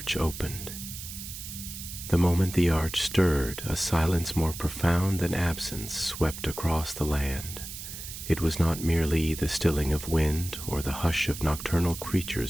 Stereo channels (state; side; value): noise; right; hiss, 10 dB below the sound